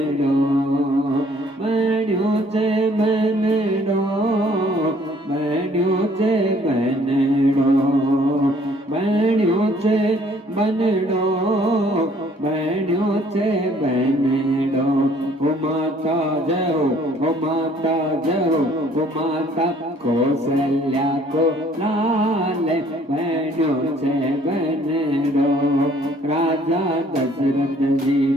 बण्यो छे बनड़ो माता जहो वो माता कौशल्या को लाल बहनों से बनरो राजा दशरथ जी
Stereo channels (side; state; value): both; normal; correlation 0.60